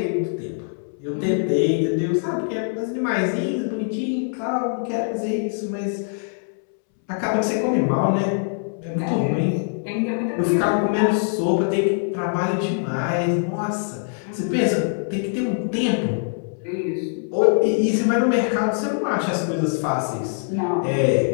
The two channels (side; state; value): right; silent; 63 dB below the other